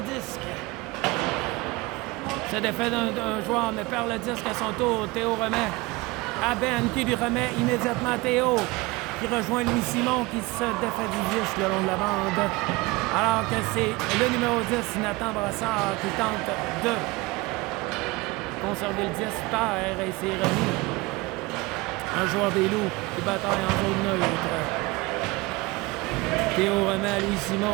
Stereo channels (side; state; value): left; quieter; 22.9 dB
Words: disque. C'est défait d'un joueur, mais perd le disque à son tour. Théo remet à Ben qui lui remet immédiatement Théo qui rejoint Louis Simon qui se défait du disque le long de la bande. Alors que c'est le numéro 10, Nathan Brassard, qui tente de conserver le disque terre et c'est remis. Un joueur des loups qui bataille en zone neutre. Théo remet à Louis